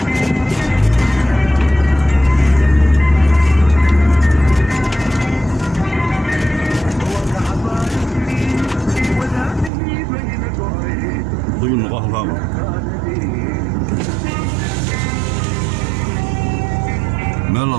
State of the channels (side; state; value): left; drops out; at 9.7 s